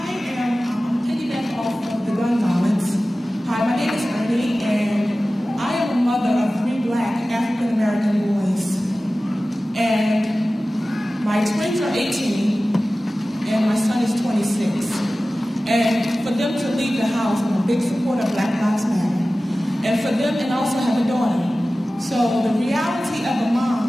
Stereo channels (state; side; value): normal; both; correlation 0.96